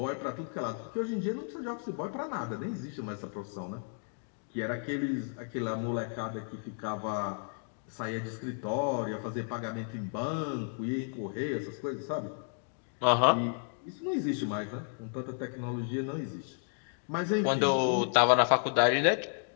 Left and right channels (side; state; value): right; silent; 56 dB below the other